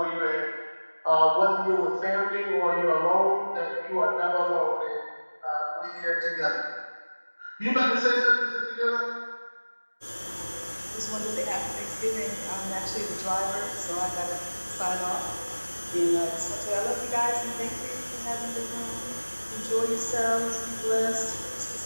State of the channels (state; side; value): inverted; both; correlation -1.00